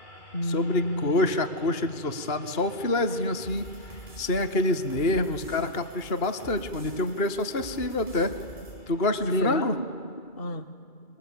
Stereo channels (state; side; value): late; right; 2.3 ms